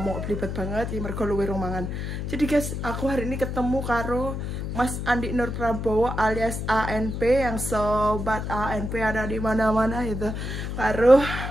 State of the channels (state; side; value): noise; left; hum, 4 dB below the sound